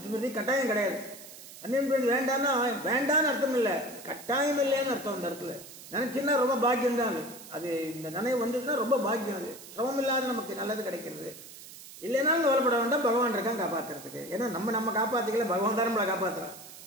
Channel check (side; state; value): right; noise; hiss, 16 dB below the sound